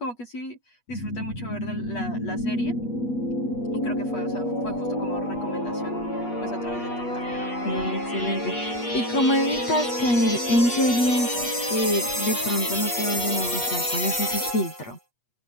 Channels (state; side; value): late; right; 8.3 ms